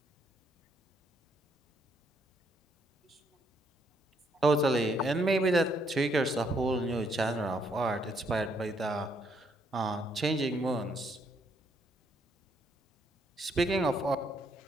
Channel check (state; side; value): normal; both; correlation 0.72